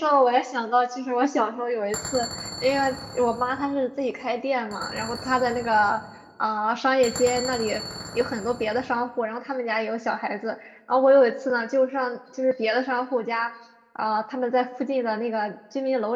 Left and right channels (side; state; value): both; identical; correlation 1.00